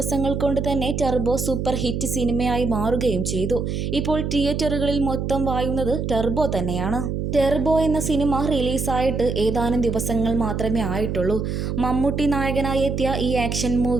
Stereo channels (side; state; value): right; noise; hum, 2 dB below the sound